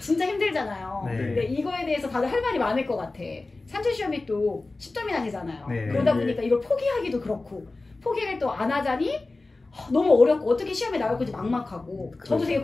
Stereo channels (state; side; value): quieter; right; 3.3 dB